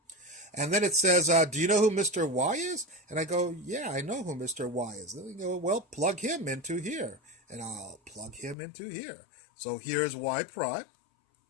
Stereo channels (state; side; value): drops out; right; at 8.6 s